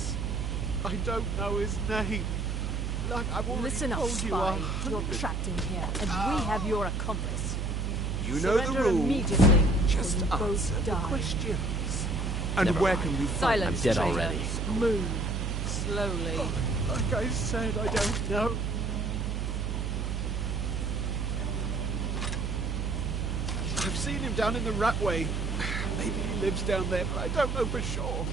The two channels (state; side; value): noise; right; hum, 1 dB below the sound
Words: I don't know his name. Like I've already Listen up, told you. spy. You're trapped in here, and we have your accomplice. You know the Surrender rules. immediately. Just or you answer both the die. questions. And Never where mind. can we find... Silence, I'm dead traitor. already. Move. Slowly. Like I said, I don't know. I've seen him down in the Ratway. Maybe he lives down there, but I don't know for sure.